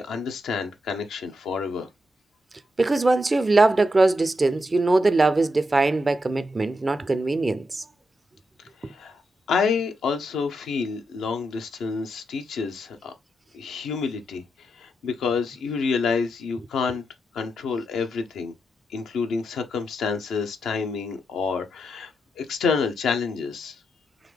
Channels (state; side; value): normal; both; correlation 0.84